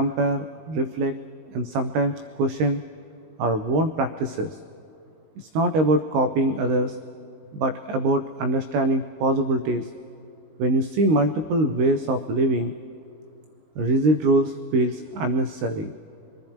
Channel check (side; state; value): left; late; 19 ms